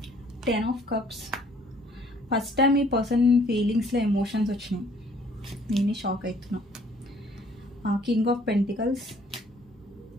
10 of cups. First time ఈ పర్సన్ ఫీలింగ్స్లో ఎమోషన్స్ వచ్చినాయి, నేనే షాక్ అవుతున్నా. King of pentacles,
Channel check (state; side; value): normal; both; correlation 0.59